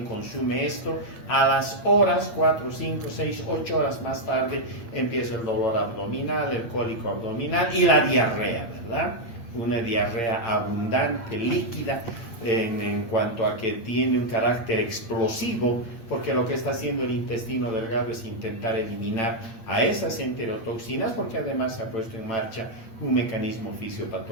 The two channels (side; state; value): right; late; 8.6 ms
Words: consume esto, a las horas, 4, 5, 6, 8 horas más tarde, empieza el dolor abdominal, el cólico abdominal y la diarrea, ¿verdad? Una diarrea abundante, líquida, en cuanto a que tiene un carácter explosivo, porque lo que está haciendo el intestino delgado es intentar eliminar a esas enterotoxinas, porque además se ha puesto en marcha un mecanismo